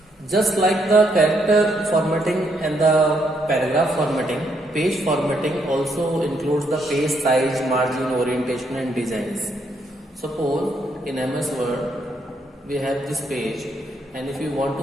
Just like the character formatting and the paragraph formatting, page formatting also includes the page size, margin, orientation and designs. Suppose in MS Word we have this page, and if you want to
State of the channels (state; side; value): normal; both; correlation 0.75